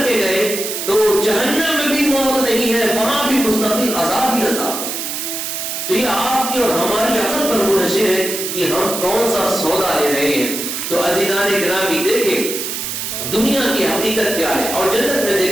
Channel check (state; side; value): noise; right; hiss, 4 dB below the sound